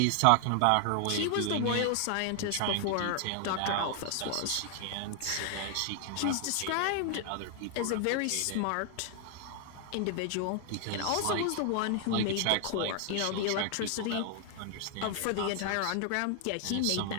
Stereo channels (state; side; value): different; both; correlation 0.00